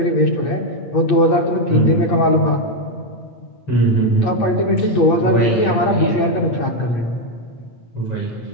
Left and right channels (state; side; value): late; right; 8.6 ms